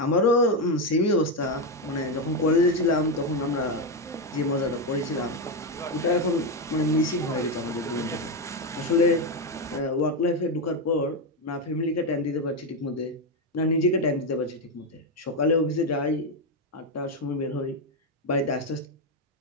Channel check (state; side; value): normal; both; correlation 0.08